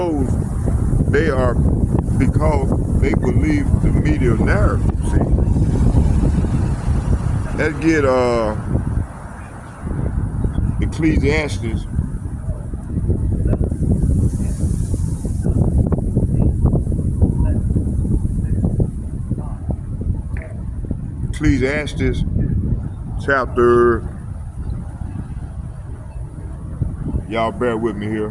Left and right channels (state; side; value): identical; both; correlation 1.00